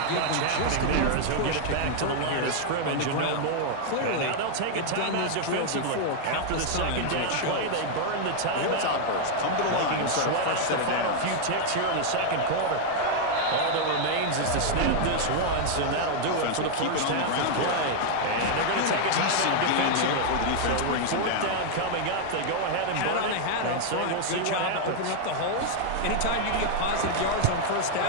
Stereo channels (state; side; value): different; both; correlation 0.00